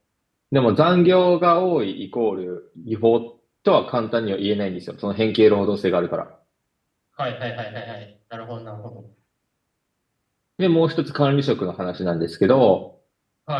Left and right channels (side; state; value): both; identical; correlation 1.00